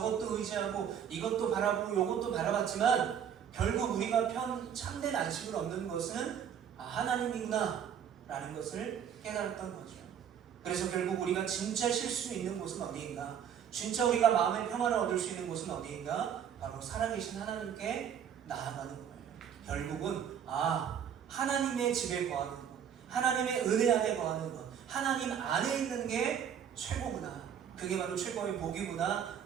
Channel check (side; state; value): left; quieter; 8.5 dB